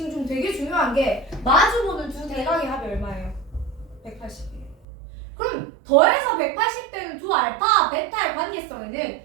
중 되게 중요한 게 마주보는 두 대각의 합이 얼마예요? 180이에요. 그럼 더해서 180되는 두 알파, 베타의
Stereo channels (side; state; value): left; drops out; at 4.9 s